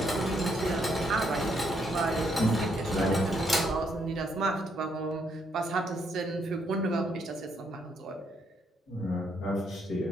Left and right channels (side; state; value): both; normal; correlation 0.74